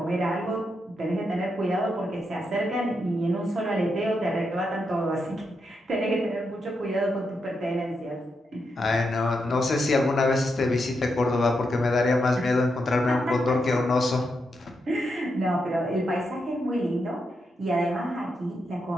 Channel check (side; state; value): both; normal; correlation 0.83